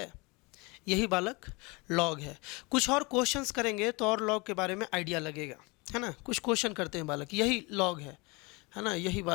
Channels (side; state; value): right; quieter; 27.0 dB